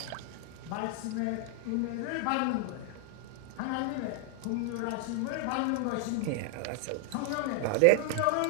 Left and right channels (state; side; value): different; both; correlation 0.00